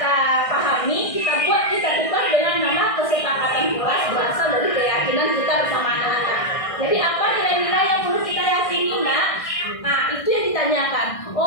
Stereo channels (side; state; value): right; late; 1.6 ms